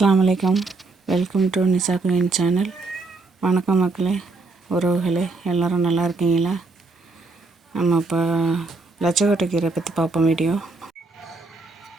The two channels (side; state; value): left; quieter; 3.6 dB